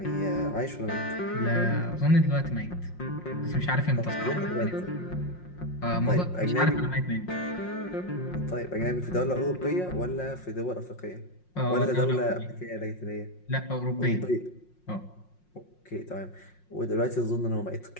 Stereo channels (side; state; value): right; late; 5.6 ms